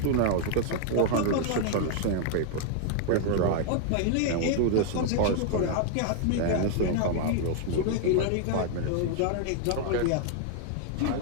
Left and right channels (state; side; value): different; both; correlation 0.00